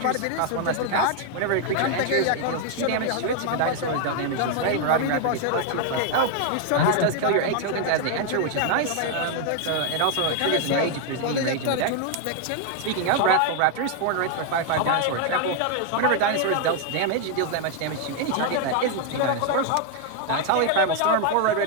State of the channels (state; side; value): different; both; correlation 0.00